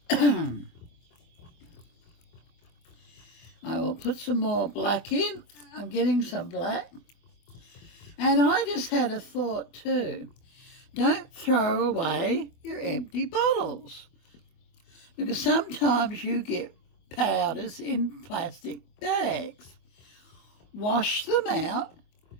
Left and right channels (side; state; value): right; late; 24 ms